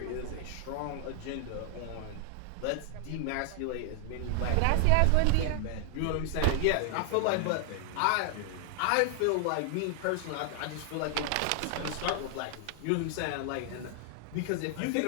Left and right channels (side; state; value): both; different; correlation 0.00